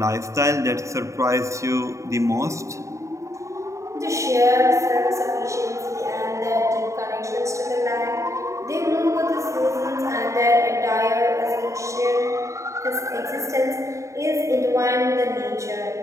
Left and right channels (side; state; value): left; late; 0.15 ms